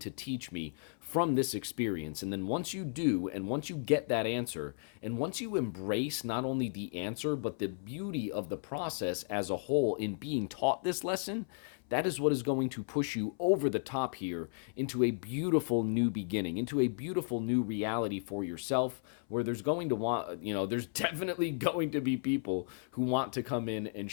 teach me from this experience? And then once you do, and once you get that answer, and once you embrace not only the answer, but the beauty of the process as a whole in being taught this lesson, that is what is going to push you over the top here into a beautiful new beginning, into a beautiful new reality for yourself, where there's going to want, there's definitely going to be people who want to come in and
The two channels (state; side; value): silent; right; 55 dB below the other